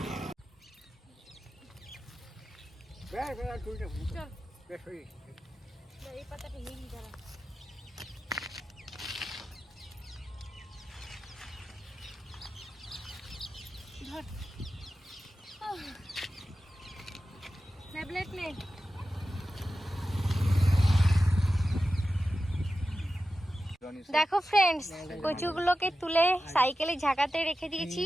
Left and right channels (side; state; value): both; normal; correlation 0.93